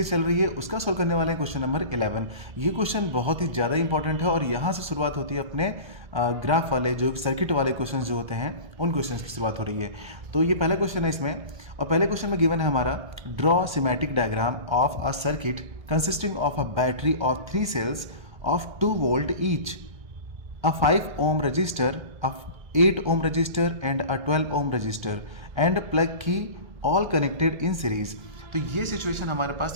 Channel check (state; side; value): late; left; 1.2 ms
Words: चल रही है। उसका सॉल्व करने वाला है क्वेश्चन नंबर 11। ये क्वेश्चन बहुत ही ज़्यादा इंपॉर्टेंट है और यहाँ से शुरुआत होती है अपने ग्राफ वाले जो सर्किट वाले क्वेश्चंस जो होते हैं उन क्वेश्चंस की शुरुआत हो रही है। तो ये पहला क्वेश्चन है इसमें, और पहले क्वेश्चन में गिवन है हमारा draw symmetric diagram of a circuit consisting of a battery of 3 cells of 2 volt each, a 5 ohm resistor, a 8 ohm resistor and a 12 ohm resistor and plug key all connected in series। तो ये situation हमारे